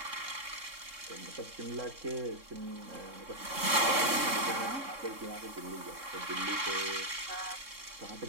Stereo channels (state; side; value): late; left; 3.7 ms